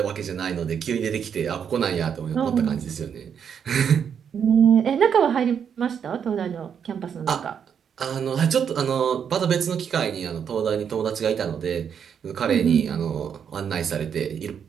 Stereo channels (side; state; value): left; quieter; 7.7 dB